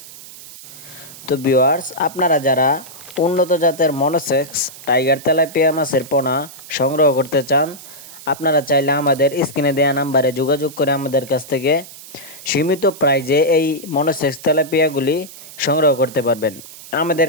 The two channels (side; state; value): right; noise; hiss, 17 dB below the sound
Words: তো ভিউয়ার্স, আপনারা যারা উন্নত জাতের মনোসেক্স টাইগার তেলাপিয়া মাছের পোনা সংগ্রহ করতে চান, আপনারা চাইলে আমাদের স্ক্রিনে দেওয়া নাম্বারে যোগাযোগ করে আমাদের কাছ থেকে সীমিত প্রাইজে এই মনোসেক্স তেলাপিয়াগুলি সংগ্রহ করতে পারবেন। আমাদের